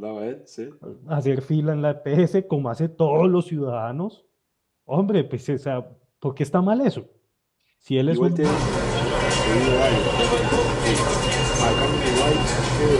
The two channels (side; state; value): both; identical; correlation 1.00